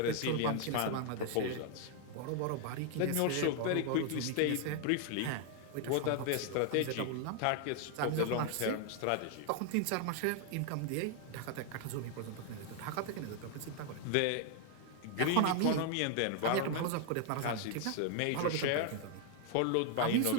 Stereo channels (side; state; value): both; different; correlation 0.00